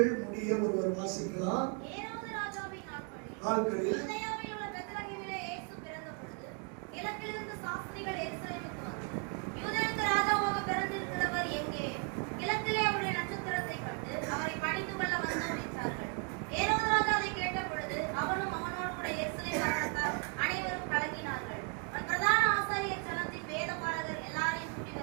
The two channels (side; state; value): left; quieter; 36.6 dB